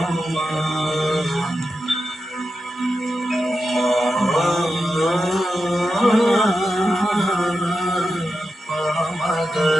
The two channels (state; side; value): normal; both; correlation 0.89